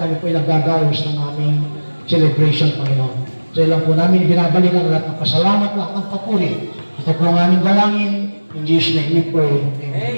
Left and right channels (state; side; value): inverted; both; correlation -1.00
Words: po naggagawas ng aming celebration, Panginoon. Sa iyo lang po namin binabalik ang lahat ng pasalamat, lahat ng papuri. Ito po ang aming dalangin. In Jesus' name we pray.